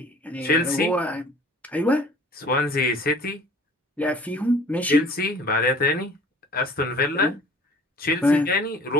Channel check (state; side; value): normal; both; correlation 0.50